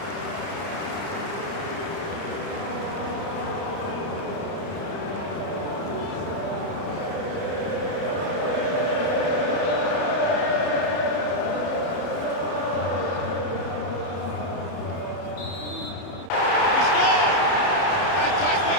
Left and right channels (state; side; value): late; right; 30 ms